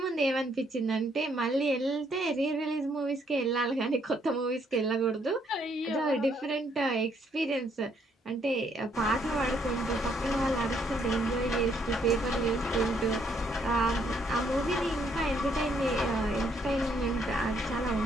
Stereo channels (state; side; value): normal; both; correlation 0.70